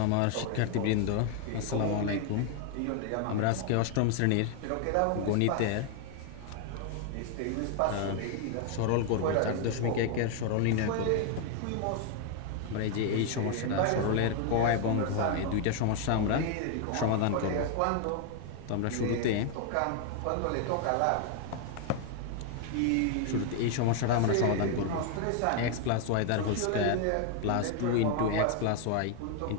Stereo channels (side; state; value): both; different; correlation 0.00